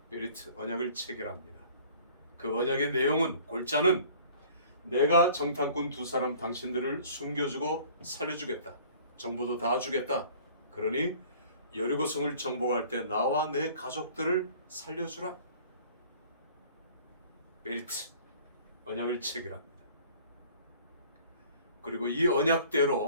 베리트 언약을 체결합니다. 그 언약의 내용은, 골자는 내가 정탐꾼 두 사람 당신들을 숨겨주고 살려주겠다. 정보도 다 주겠다. 그러니 여리고성을 정복할 때 나와 내 가족들을 살려주라. 베리트 언약을 체결합니다. 그리고 이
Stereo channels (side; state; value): both; inverted; correlation -0.51